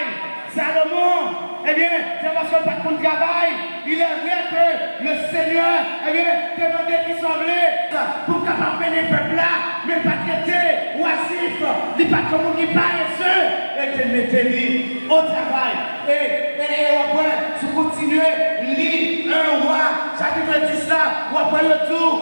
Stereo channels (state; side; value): inverted; both; correlation -1.00